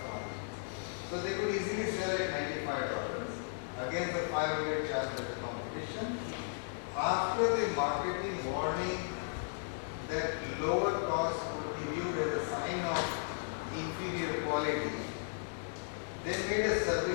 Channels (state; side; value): silent; right; digital silence